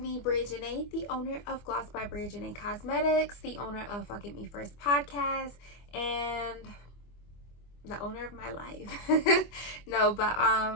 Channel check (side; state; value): right; late; 24 ms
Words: Bria Janae, the owner of Gloss by Bria Janae Cosmetics, the owner of Fuck It Me First podcast, and the owner of my life.